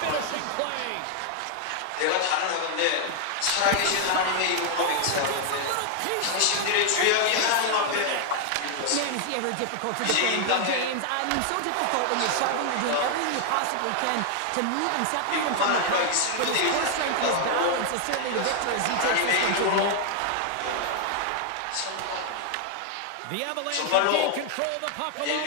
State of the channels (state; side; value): different; both; correlation 0.00